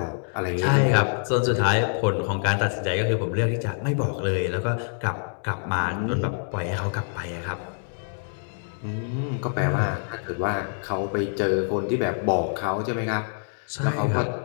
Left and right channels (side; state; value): right; silent; digital silence